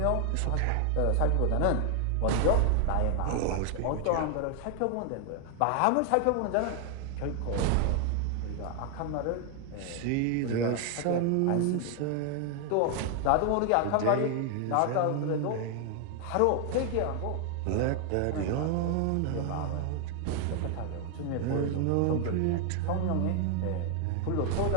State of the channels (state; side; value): different; both; correlation 0.00